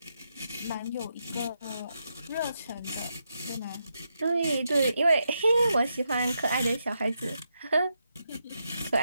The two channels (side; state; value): both; inverted; correlation -0.84